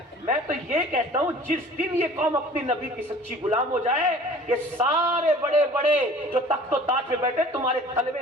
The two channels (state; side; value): normal; both; correlation 0.47